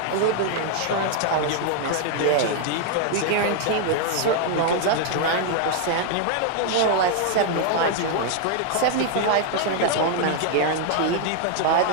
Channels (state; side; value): different; both; correlation 0.00